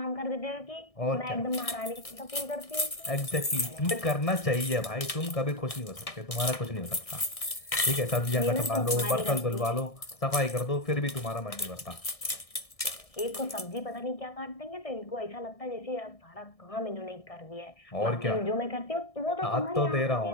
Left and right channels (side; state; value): right; late; 1.6 ms